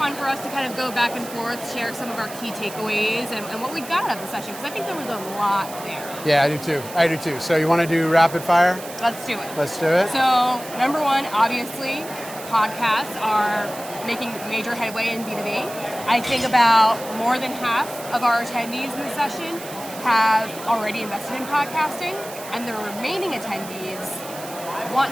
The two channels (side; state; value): right; noise; hiss, 14 dB below the sound